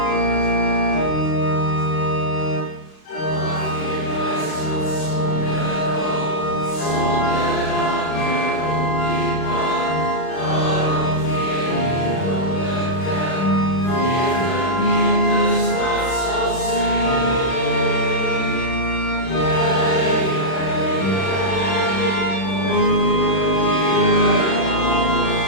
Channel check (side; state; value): right; late; 36 ms